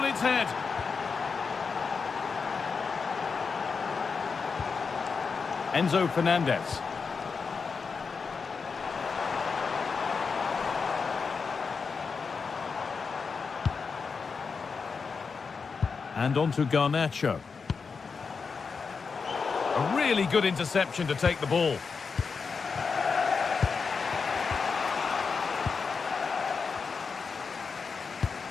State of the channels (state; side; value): quieter; right; 5.2 dB